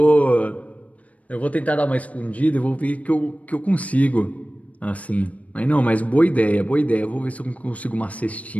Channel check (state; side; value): late; right; 0.068 ms